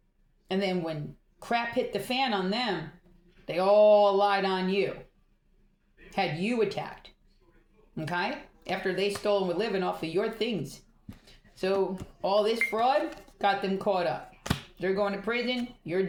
And then when crap hit the fan on them, they all lied on you, had you attacked, okay? After they stole and were living off of your things. So all this fraud got them caught up. They're going to prison. You're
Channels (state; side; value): identical; both; correlation 1.00